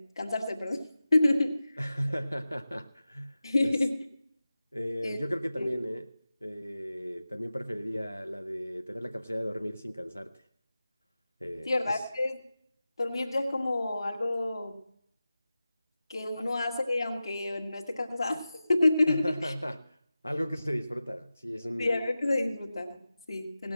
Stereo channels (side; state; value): both; inverted; correlation -0.94